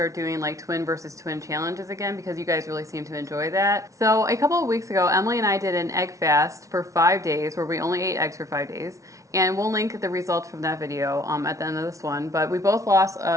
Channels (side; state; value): left; late; 0.15 ms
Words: doing like twin versus twin challenges again because you guys really seem to enjoy that. So a couple of weeks ago, Emily and I did an egg fast for 5 days where we only ate eggs for 5 days, and we'll link the results from that video at the end of this one, but we both lost